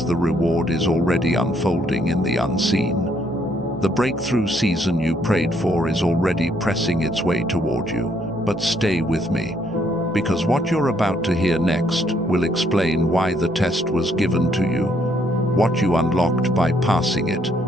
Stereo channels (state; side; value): normal; both; correlation 0.70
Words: the reward is already unfolding in the unseen. The breakthrough season you prayed for is already pressing its way toward you. But stay with me, because what you're about to hear next will explain why the test was given to you, what you unlocked by passing it,